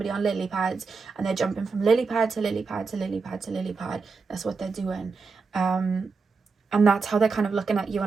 on lily pads, and they're jumping from lily pad to lily pad to lily pad to lily pad. That's what they're doing, and that's how they're kind of looking at you.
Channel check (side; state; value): left; quieter; 4.6 dB